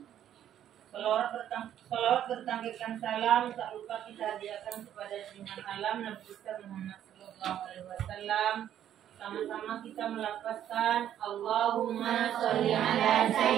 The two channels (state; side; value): quieter; left; 10.7 dB